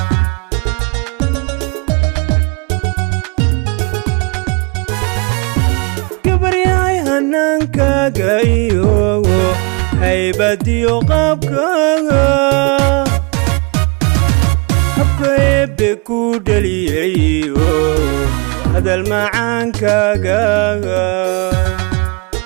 gabaryahay hannaankaaga iyo haybadiyo qaabkaaga habka eebbe ku dhaliyayo hadal macaankaaga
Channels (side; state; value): left; quieter; 32.0 dB